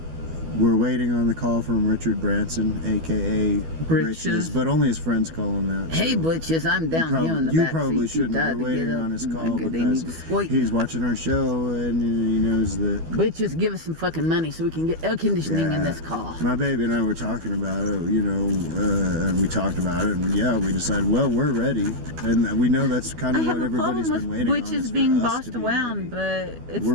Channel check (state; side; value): late; left; 12 ms